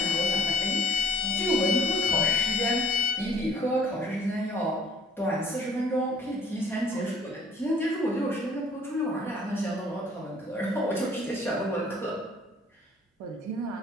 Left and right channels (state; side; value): normal; both; correlation 0.57